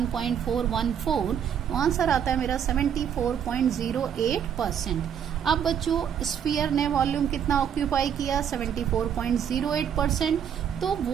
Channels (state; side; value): quieter; left; 8.5 dB